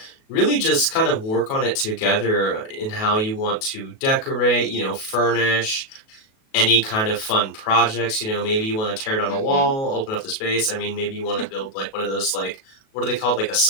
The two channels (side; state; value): right; late; 37 ms